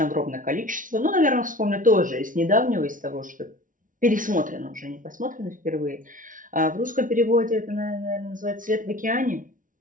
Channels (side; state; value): left; late; 0.38 ms